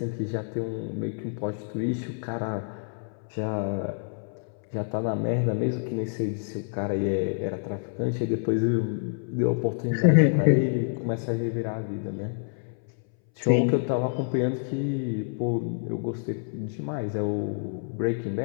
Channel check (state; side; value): silent; right; 60 dB below the other